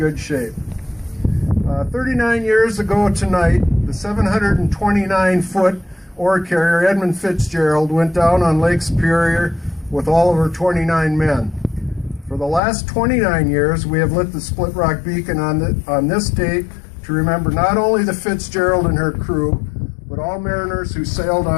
shape. 39 years ago tonight, the 729-foot ore carrier Edmund Fitzgerald went down on Lake Superior with all of her 29 men. For the last 29 years, we have lit the Split Rock Beacon on this date to remember not only the Fitzgerald and her crew, but all mariners who sailed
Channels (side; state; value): right; drops out; at 12.6 s